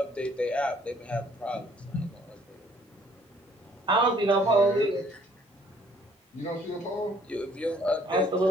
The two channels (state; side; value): normal; both; correlation 0.61